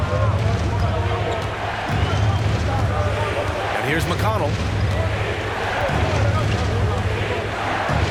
And here's McConnell.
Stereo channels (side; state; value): both; identical; correlation 1.00